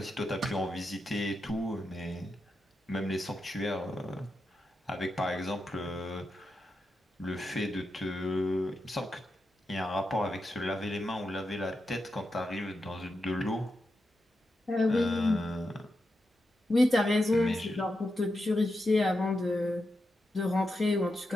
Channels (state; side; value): normal; both; correlation 0.87